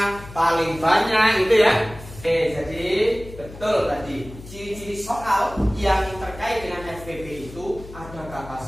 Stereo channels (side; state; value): left; noise; hum, 16 dB below the sound